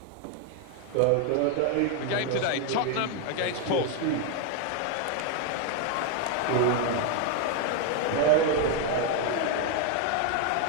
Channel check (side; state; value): both; different; correlation 0.01